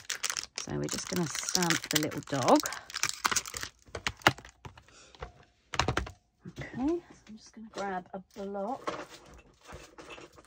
So we're just going to stamp the little dog. Okay, so I'm just going to grab a block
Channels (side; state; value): both; identical; correlation 1.00